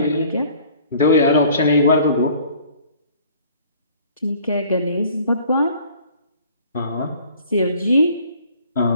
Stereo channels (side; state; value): both; inverted; correlation -0.53